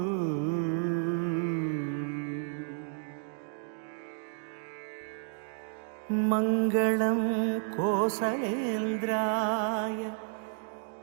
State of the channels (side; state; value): left; silent; digital silence